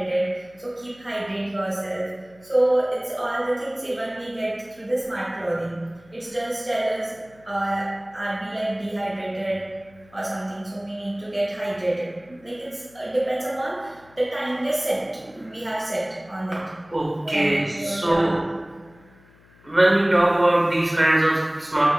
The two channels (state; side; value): noise; left; hum, 27 dB below the sound